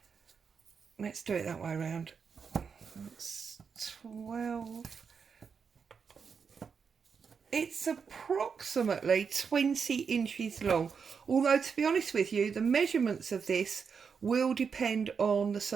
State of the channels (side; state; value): left; quieter; 6.0 dB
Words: let's do it that way around, it's 12, it's approximately 20 inches long, although to be honest with you, the measurements of this will depend on the